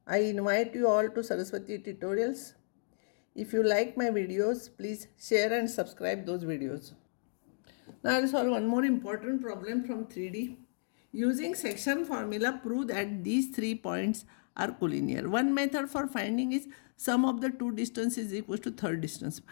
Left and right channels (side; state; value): right; silent; digital silence